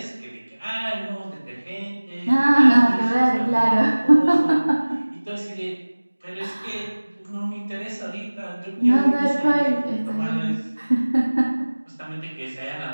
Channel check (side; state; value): both; inverted; correlation -1.00